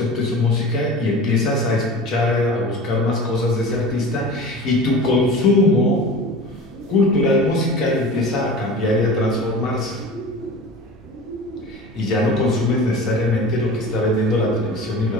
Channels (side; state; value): both; normal; correlation 0.36